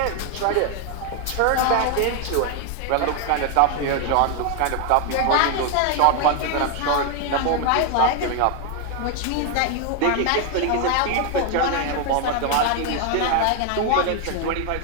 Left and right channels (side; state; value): both; different; correlation 0.01